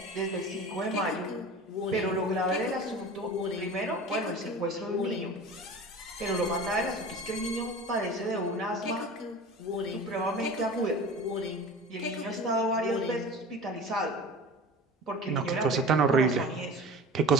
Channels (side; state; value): both; normal; correlation 0.36